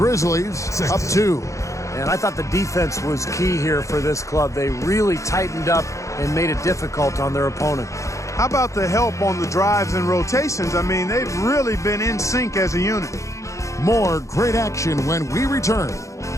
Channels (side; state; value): right; late; 0.15 ms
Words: up 2. And I thought the defense was key here for this club. They really tightened up and made it difficult on their opponent. How about the help on the drives and rotations? I mean, they've really been in sync as a unit. More great action when we return.